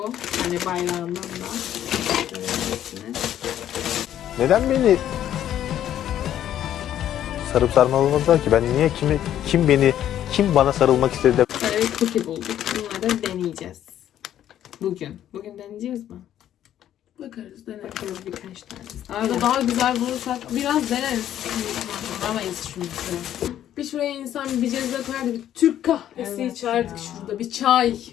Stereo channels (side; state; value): right; quieter; 11.2 dB